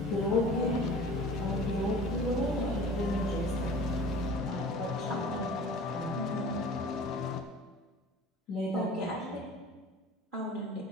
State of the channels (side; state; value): both; normal; correlation 0.43